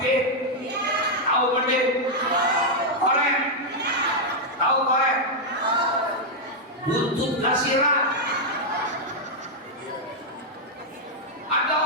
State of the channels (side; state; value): both; normal; correlation -0.02